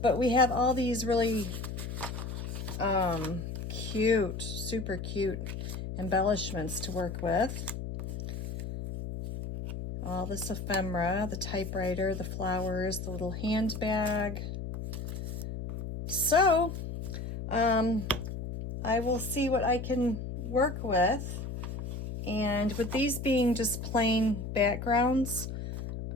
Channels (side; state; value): left; noise; hum, 6 dB below the sound